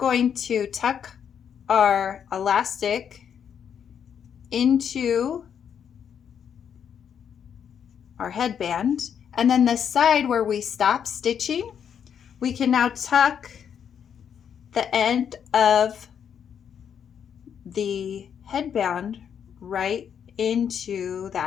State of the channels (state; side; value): quieter; right; 8.1 dB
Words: to tuck our elastic into our headband, and then the side where we stopped stitching, we can now tuck the end of the headband right into